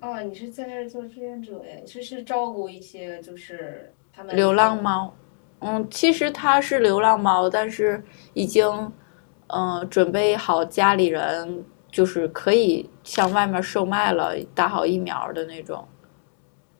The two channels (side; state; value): right; silent; 63 dB below the other